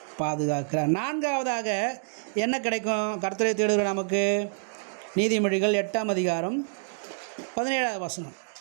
பாதுகாக்கிறார். நான்காவதாக என்ன கிடைக்கும் கர்த்தரை தேடுகிற நமக்கு, நீதிமொழிகள் 8ஆம் அதிகாரம் 17வது வசனம்.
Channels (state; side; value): silent; left; digital silence